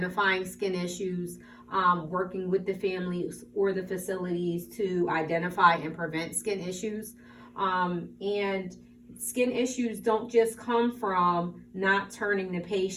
skin issues, working with the families or the facilities to identify and prevent skin issues. And skin issues don't just come from not turning the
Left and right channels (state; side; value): identical; both; correlation 1.00